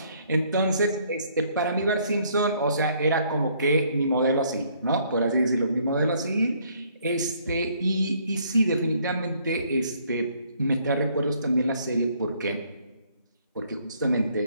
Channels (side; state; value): both; inverted; correlation -0.65